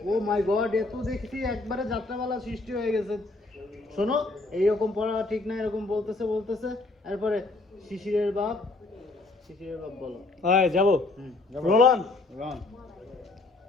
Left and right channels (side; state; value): right; quieter; 3.2 dB